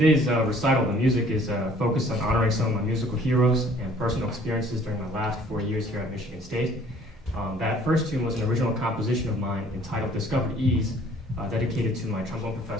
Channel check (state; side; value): normal; both; correlation 0.56